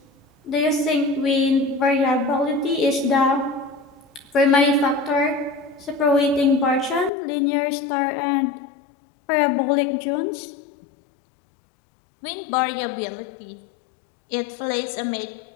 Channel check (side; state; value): right; drops out; at 7.1 s